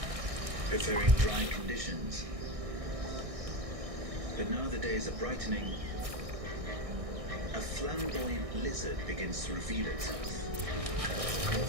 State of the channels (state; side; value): late; left; 1.6 ms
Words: preferring dry conditions. But now the days are brightening, a flamboyant lizard begins to reveal itself.